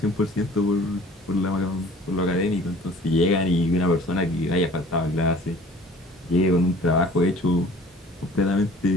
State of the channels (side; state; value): both; normal; correlation 0.49